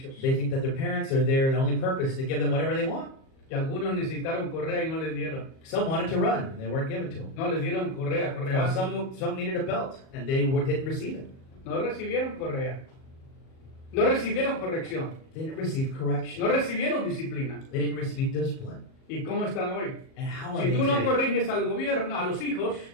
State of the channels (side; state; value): right; late; 38 ms